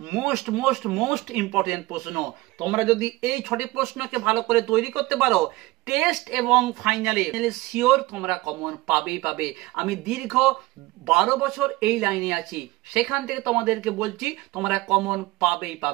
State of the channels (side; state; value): left; quieter; 20.2 dB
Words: মোস্ট মোস্ট মোস্ট ইম্পর্টেন্ট প্রশ্ন। তোমরা যদি এই 6টি প্রশ্নকে ভালো করে তৈরি করতে পারো, টেস্ট এবং ফাইনালে শিওর তোমরা কমন পাবেই পাবে। আমি দীর্ঘ 12 বছর এই লাইনে আছি, সেখান থেকে তোমাদেরকে বলছি তোমরা কমন পাবেই